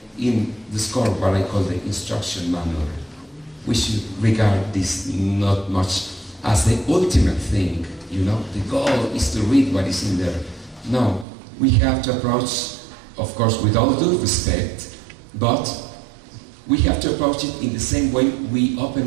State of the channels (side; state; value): left; drops out; at 11.2 s